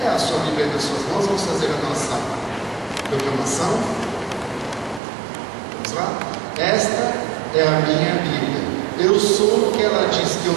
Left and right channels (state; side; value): drops out; left; at 5.0 s